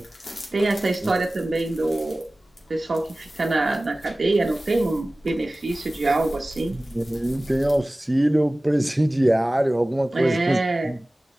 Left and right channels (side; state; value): both; normal; correlation 0.97